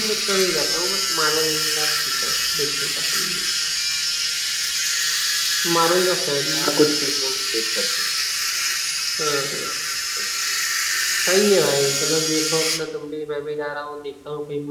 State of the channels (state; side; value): identical; both; correlation 1.00